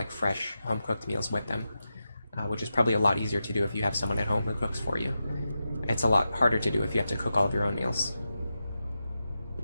fresh home-cooked meals with them, which is probably a lot easier to do if you have someone at home who cooks for you. It's a lot harder to do if you have to cook all of your own meals.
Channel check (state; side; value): inverted; both; correlation -0.90